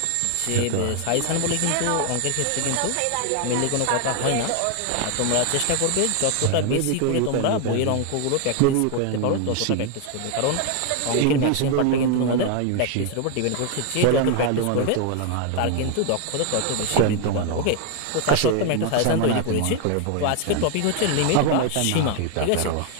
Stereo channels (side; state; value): both; different; correlation 0.00